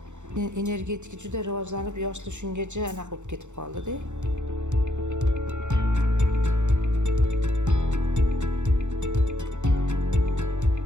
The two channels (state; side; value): late; left; 0.84 ms